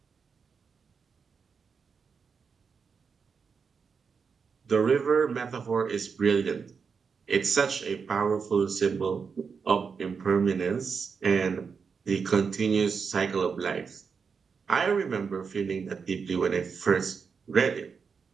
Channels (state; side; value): quieter; left; 5.7 dB